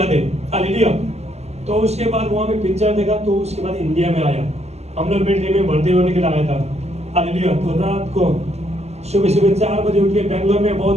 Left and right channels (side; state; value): left; late; 0.31 ms